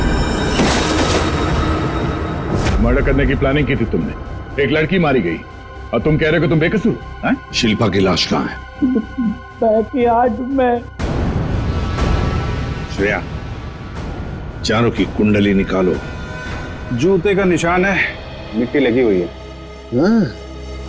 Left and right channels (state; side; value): identical; both; correlation 1.00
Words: मर्डर करने की प्लानिंग की थी तुमने, एक लड़की मारी गई और तुम कह रहे हो कि तुम बेकसूर हैं? शिल्पा की लाश कहाँ है? बैकयार्ड में। श्रेया, चारों की कुंडली निकालो। जूते का निशान है, मिट्टी लगी हुई है।